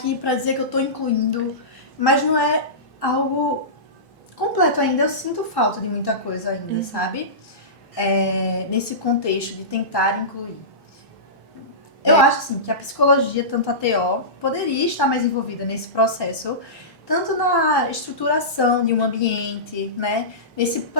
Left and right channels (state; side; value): normal; both; correlation -0.20